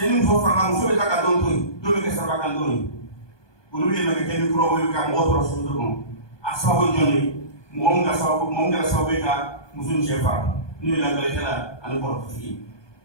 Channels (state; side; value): late; right; 1.2 ms